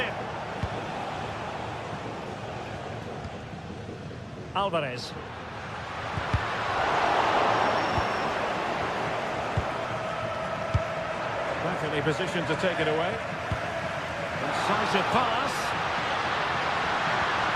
Alvarez. Perfectly positioned to take it away. Decisive pass.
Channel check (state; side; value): identical; both; correlation 1.00